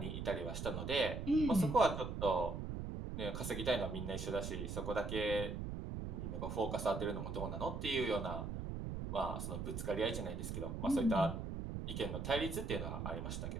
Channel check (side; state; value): right; noise; rumble, 4 dB below the sound